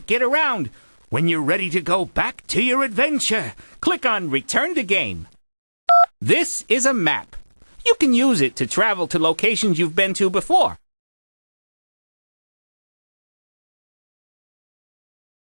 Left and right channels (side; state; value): both; inverted; correlation -1.00